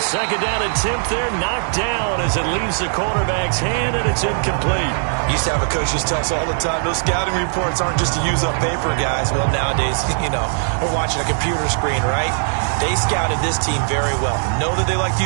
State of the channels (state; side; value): silent; left; digital silence